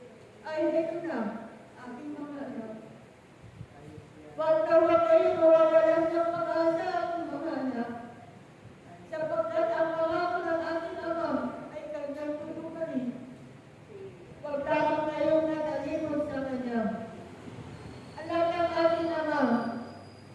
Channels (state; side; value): identical; both; correlation 1.00